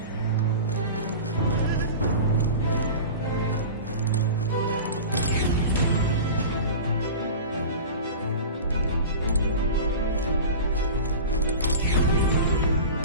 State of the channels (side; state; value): both; inverted; correlation -0.32